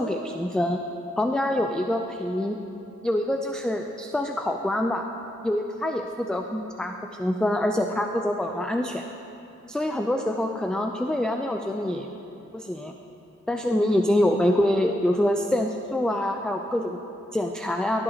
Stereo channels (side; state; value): both; normal; correlation 0.83